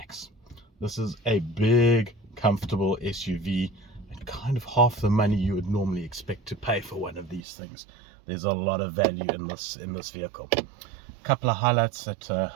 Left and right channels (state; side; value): drops out; left; at 7.4 s